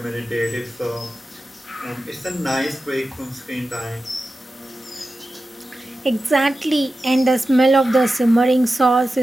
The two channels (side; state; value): both; normal; correlation 0.93